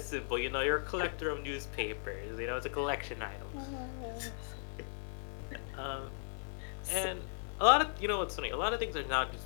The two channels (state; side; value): silent; right; digital silence